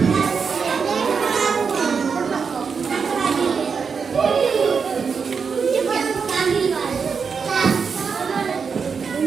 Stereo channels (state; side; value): quieter; left; 5.8 dB